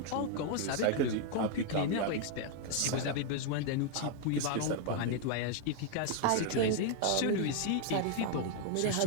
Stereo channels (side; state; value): both; different; correlation 0.00